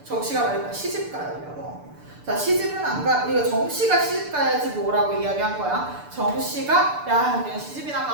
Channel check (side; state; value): left; late; 6.8 ms